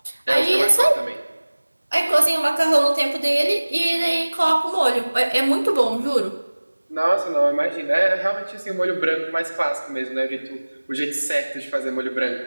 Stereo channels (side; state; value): both; inverted; correlation -1.00